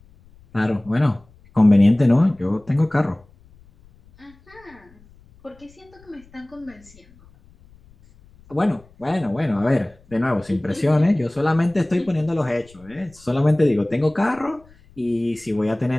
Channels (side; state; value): left; noise; rumble, 27 dB below the sound